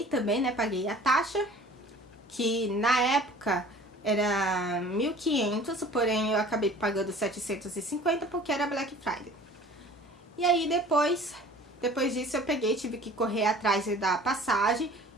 também, né? Paguei a taxa, que na época era 1.500, porém eu acabei pagando 750 porque era Black Friday. E aí depois disso eu tive que correr atrás da passagem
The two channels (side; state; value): both; normal; correlation 0.46